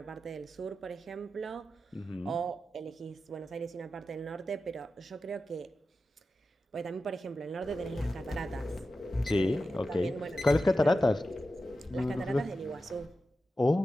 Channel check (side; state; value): both; normal; correlation 0.92